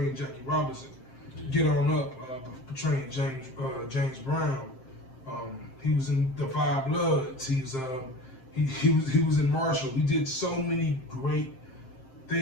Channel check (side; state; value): right; late; 7.6 ms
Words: Jackie Robinson, Get On Up, portraying James Brown. He was in The Five Bloods. He was in Marshall. He did so many great